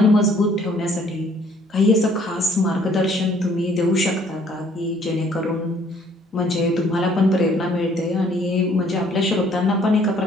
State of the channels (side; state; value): both; normal; correlation 0.61